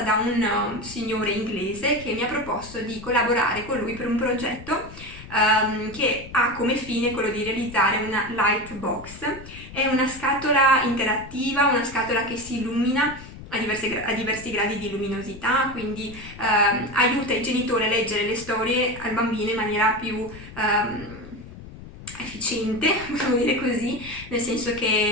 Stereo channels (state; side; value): noise; left; rumble, 16 dB below the sound